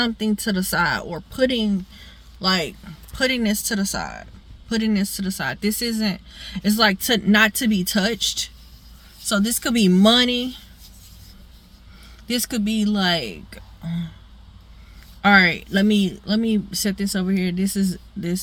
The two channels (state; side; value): identical; both; correlation 1.00